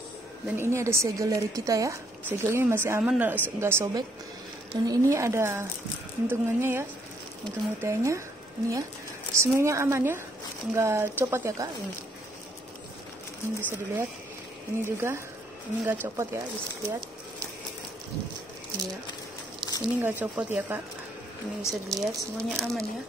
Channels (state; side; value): normal; both; correlation 0.69